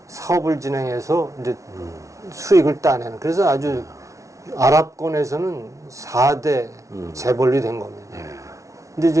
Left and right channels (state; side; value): late; left; 0.15 ms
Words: 사업을 진행해서 이제 수익을 따내는. 그래서 아주 아랍권에서는 4대 재벌이 된 겁니다. 근데